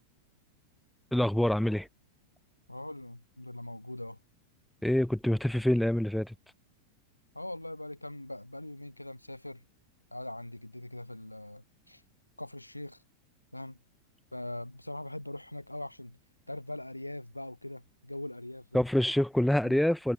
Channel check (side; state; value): both; normal; correlation 0.84